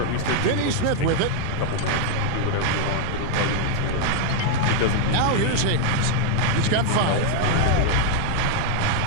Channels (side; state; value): both; different; correlation 0.00